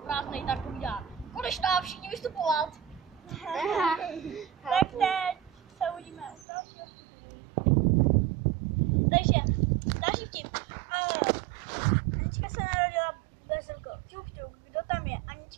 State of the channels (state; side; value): drops out; left; at 6.5 s